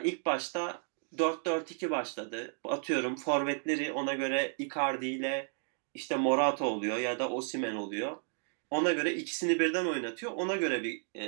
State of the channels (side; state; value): left; silent; 56 dB below the other